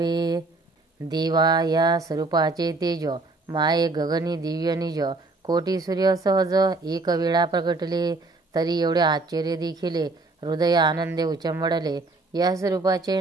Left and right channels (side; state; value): left; quieter; 3.3 dB